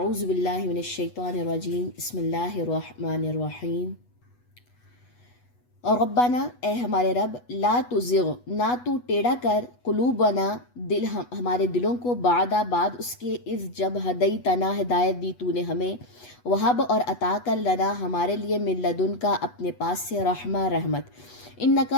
باللہ من الشیطان الرجیم، بسم اللہ الرحمن الرحیم۔ اور ربنا، اے ہمارے رب، لا تزغ، نہ تو ٹیڑھا کر، قلوبنا، دل ہمارے دلوں کو، بعد اس کے، اذ جب، ہدیتنا، ہدایت دی تو نے ہمیں، وہب اور عطا کر، لنا ہمارے لیے، من لدن کا اپنے پاس سے، رحمہ رحمت،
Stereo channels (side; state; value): right; late; 8.2 ms